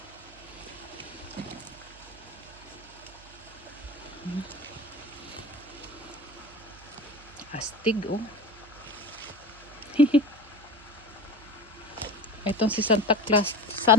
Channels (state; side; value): noise; right; hum, 22 dB below the sound